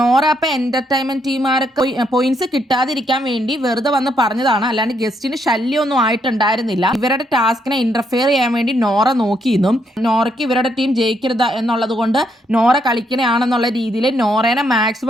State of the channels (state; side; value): normal; both; correlation 0.75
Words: അപ്പൊ എന്റർടൈൻമെന്റ് ടീമുകാർക്ക് പോയിന്റ്സ് കിട്ടാതിരിക്കാൻ വേണ്ടി വെറുതെ വന്ന് പറഞ്ഞതാണ്, അല്ലാണ്ട് ഗസ്റ്റിന് ശല്യമൊന്നും ആയിട്ടുണ്ടായിരുന്നില്ല. ഇവരുടെ ടാസ്കിനെ ഇന്റർഫിയർ ചെയ്യാൻ വേണ്ടി നോറ നോക്കിയിരുന്നു. നോറയ്ക്ക് ഇവരുടെ ടീം ജയിക്കരുത് എന്നുള്ളത് കൊണ്ട് നോറ കളിക്കണയാണെന്നുള്ള രീതിയിൽ നോറേനെ